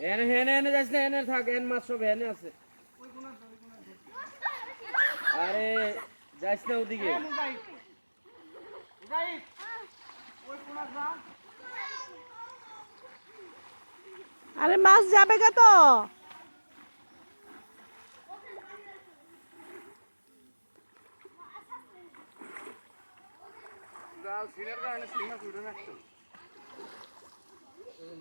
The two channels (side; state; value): both; inverted; correlation -1.00